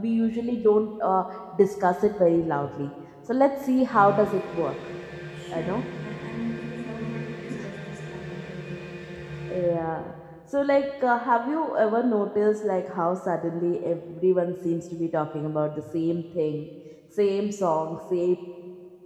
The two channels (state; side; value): identical; both; correlation 1.00